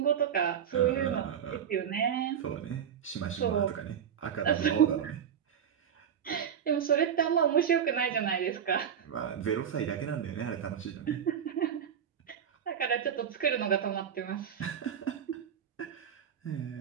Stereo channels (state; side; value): quieter; left; 8.3 dB